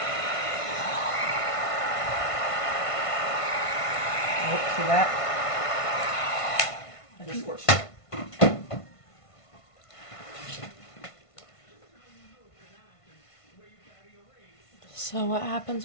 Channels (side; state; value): right; late; 1.5 ms